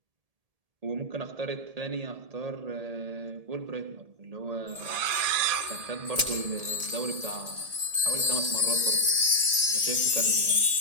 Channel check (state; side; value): late; left; 1.8 ms